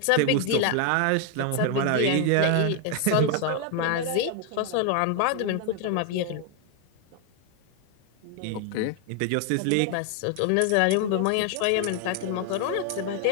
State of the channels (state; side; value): different; both; correlation 0.00